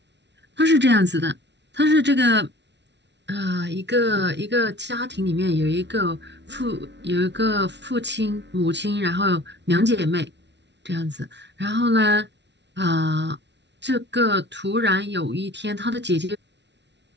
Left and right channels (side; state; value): left; late; 0.51 ms